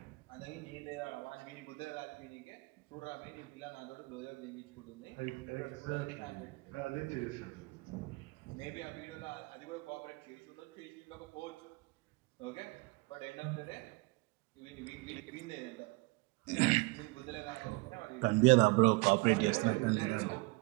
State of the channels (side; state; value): left; quieter; 26.5 dB